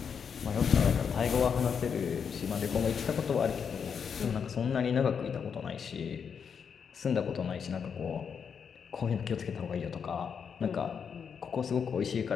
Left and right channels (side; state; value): right; quieter; 6.8 dB